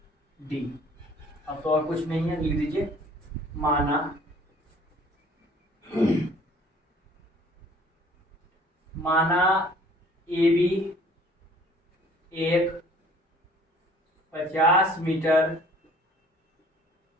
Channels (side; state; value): both; normal; correlation 0.54